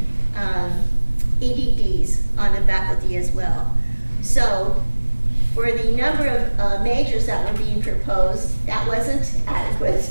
EDDs on the faculty as well. So for the number of majors that were being proposed, that wasn't adequate.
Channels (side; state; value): both; inverted; correlation -1.00